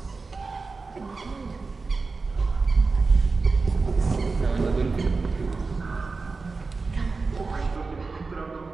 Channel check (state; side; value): quieter; left; 4.1 dB